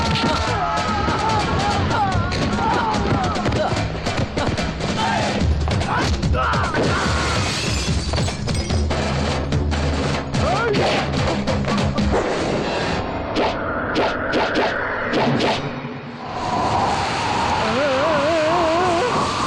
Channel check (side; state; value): both; identical; correlation 1.00